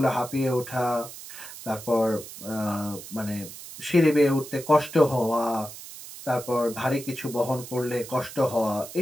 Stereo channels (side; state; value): right; noise; hiss, 14 dB below the sound